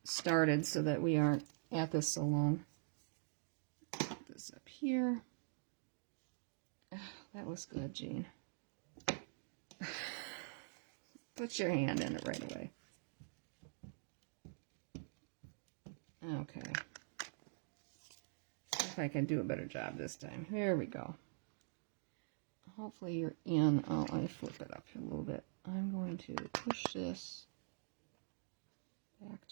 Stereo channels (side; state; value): left; silent; digital silence